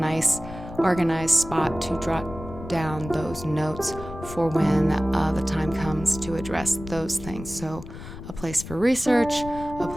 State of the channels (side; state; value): left; noise; rumble, 12 dB below the sound